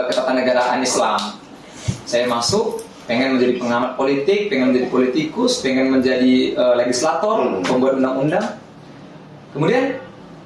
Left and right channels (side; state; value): both; identical; correlation 1.00